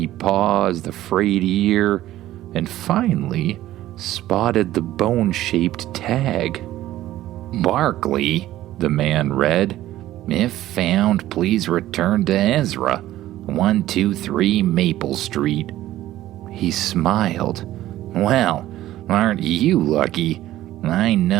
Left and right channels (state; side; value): quieter; left; 14.5 dB